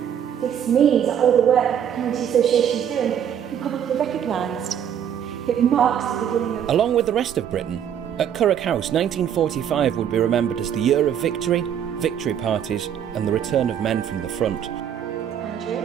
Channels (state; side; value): quieter; left; 9.1 dB